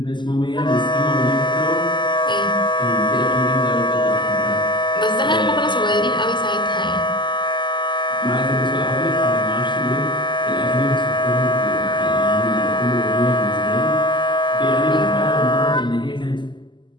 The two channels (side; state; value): right; late; 0.22 ms